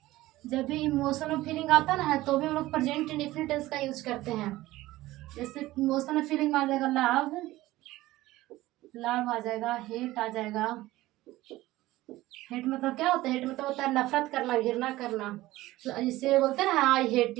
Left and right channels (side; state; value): left; quieter; 17.2 dB